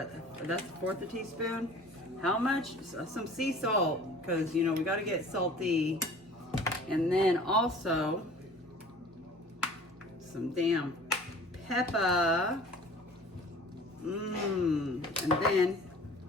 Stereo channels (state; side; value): normal; both; correlation 0.46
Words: That's 1/4 a teaspoon. How much? Some sea salt, because you know we gotta get salty. And then also some damn pepper. And then